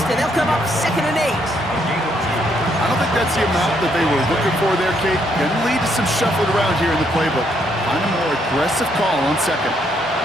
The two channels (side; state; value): both; normal; correlation 0.72